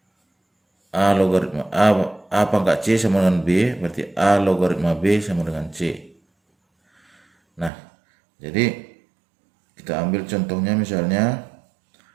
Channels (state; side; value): drops out; left; at 7.7 s